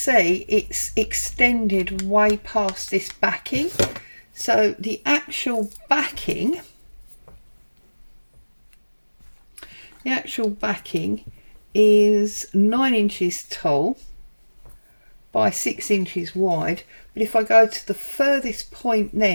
it's extended way past this backing. So the actual backing is 9 inches tall by 6 inches wide. But if I go to the furthest point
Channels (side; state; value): both; inverted; correlation -1.00